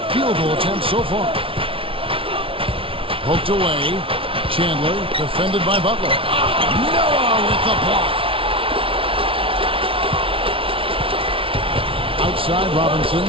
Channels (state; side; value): late; left; 0.26 ms